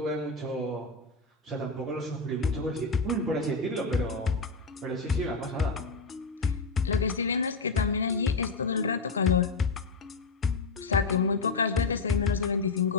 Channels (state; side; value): quieter; right; 3.8 dB